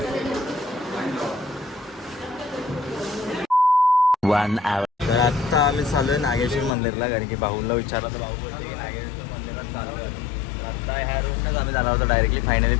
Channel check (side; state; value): right; drops out; at 6.7 s